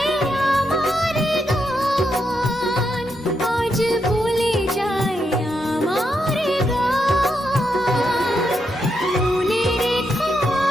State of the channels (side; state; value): both; normal; correlation 0.82